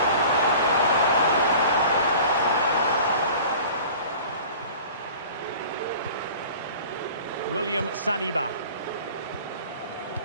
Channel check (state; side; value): inverted; both; correlation -0.43